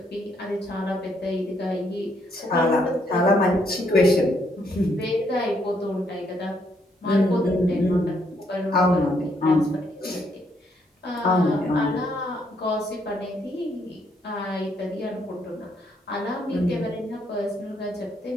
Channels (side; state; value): both; normal; correlation 0.72